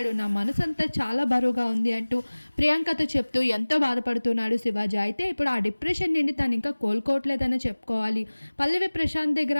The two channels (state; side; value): inverted; both; correlation -1.00